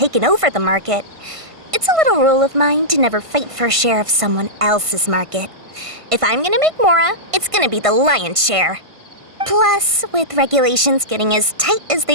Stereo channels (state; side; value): late; left; 1.5 ms